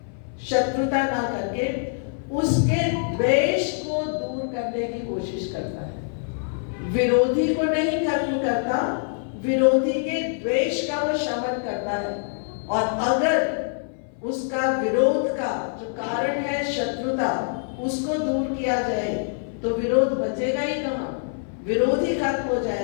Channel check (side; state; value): right; silent; 58 dB below the other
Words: शत्रुता ना करके उसके द्वेष को दूर करने की कोशिश करता है। विरोधी को नहीं खत्म करता, विरोधी के द्वेष का वो शमन करता है। और अगर उसका विरोध का जो कारण है शत्रुता, उसको दूर किया जाए तो विरोध बचेगा ही कहाँ, विरोध ही खत्म हो